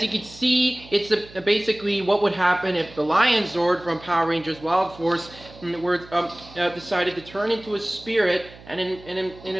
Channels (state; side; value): noise; right; hum, 20 dB below the sound